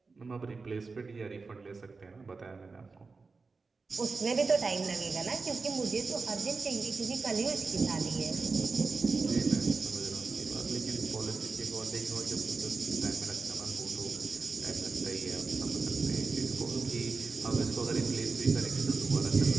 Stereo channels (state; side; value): quieter; left; 4.3 dB